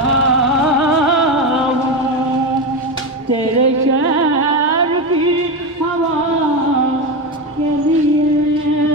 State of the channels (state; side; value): normal; both; correlation 0.16